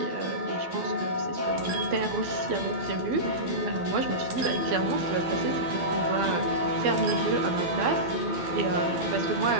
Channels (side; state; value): left; late; 12 ms